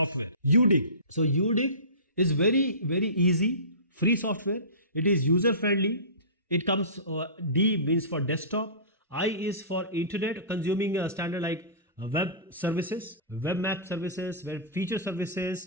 UDIG. So UDIG is very, very easy, free software. It is user friendly. It comes, D means for desktop, I is for internet, consuming a standard like web services, web map services, web feature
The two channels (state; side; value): inverted; both; correlation -0.32